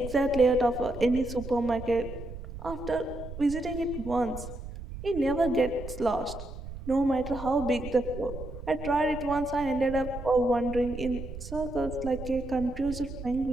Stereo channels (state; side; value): noise; right; rumble, 10 dB below the sound